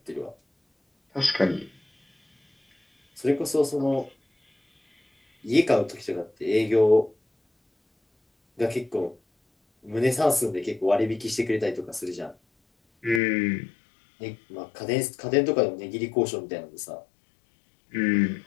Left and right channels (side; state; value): right; drops out; at 13.2 s